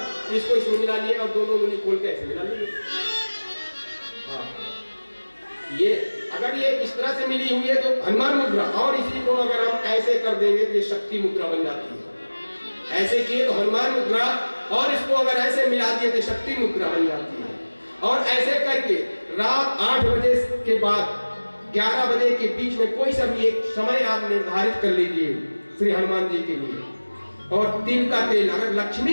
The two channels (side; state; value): both; inverted; correlation -1.00